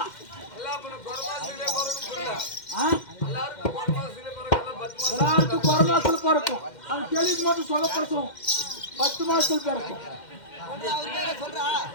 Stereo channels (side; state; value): right; late; 2.1 ms